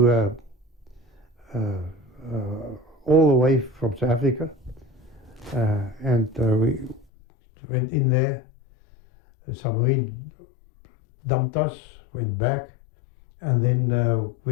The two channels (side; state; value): right; drops out; at 7.1 s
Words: all the way from South Africa, and we went in there. The submarine dumped us, went back, and then